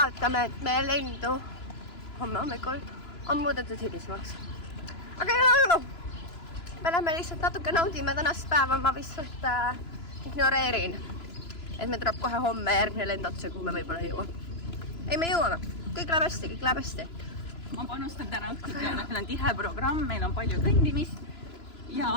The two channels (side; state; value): right; late; 3.0 ms